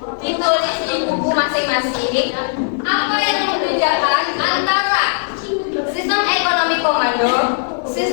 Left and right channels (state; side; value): silent; right; 56 dB below the other